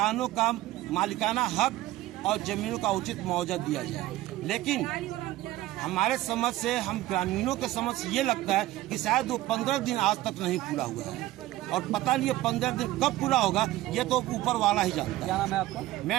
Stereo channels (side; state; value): left; quieter; 16.3 dB